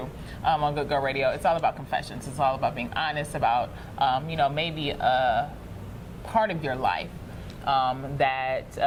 on Good Girl Radio, it's all about confessions. It's all about being honest about, maybe a part of your life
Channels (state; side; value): identical; both; correlation 1.00